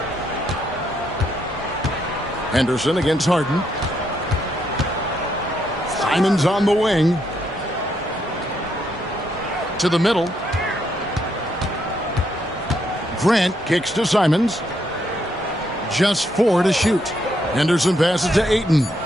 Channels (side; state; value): both; normal; correlation 0.76